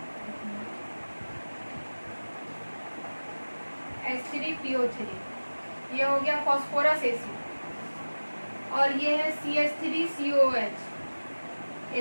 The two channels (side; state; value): both; inverted; correlation -1.00